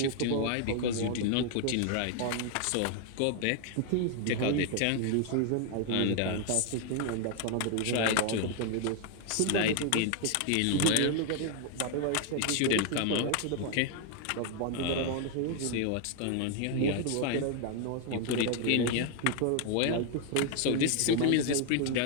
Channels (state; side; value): different; both; correlation 0.00